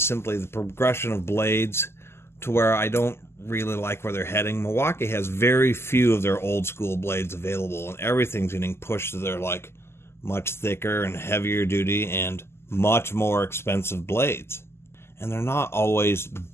simply the progression of blades to where I don't really like where they're heading. Milwaukee has very few of their old school blades available, and everything's getting pushed to their much thicker and heavier duty and much more expensive blades. And they're not always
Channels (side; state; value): right; late; 0.12 ms